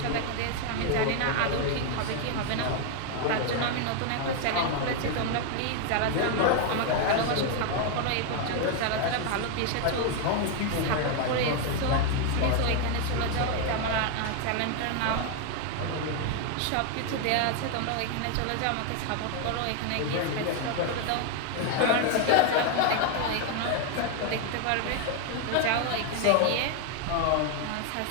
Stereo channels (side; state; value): both; different; correlation 0.01